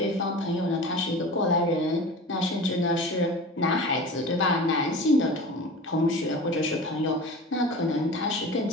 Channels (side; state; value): both; normal; correlation 0.35